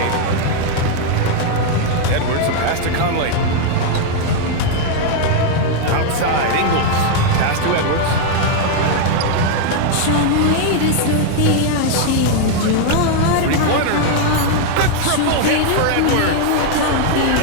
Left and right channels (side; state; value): both; different; correlation 0.00